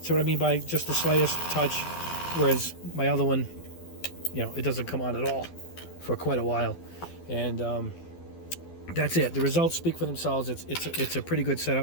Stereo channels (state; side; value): late; right; 12 ms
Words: See what I mean by just the slightest touch, whereas my other one, you know, it doesn't come on at all for quite a while. And that's it. The results speak for themselves. It's a pretty good